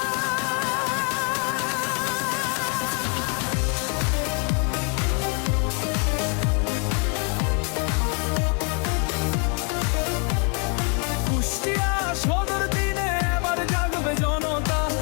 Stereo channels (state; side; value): quieter; right; 36.5 dB